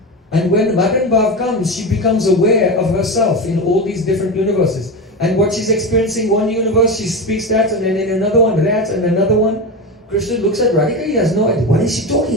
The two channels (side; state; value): both; normal; correlation 0.20